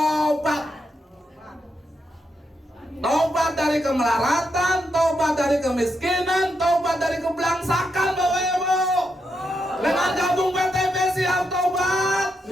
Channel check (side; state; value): both; normal; correlation 0.83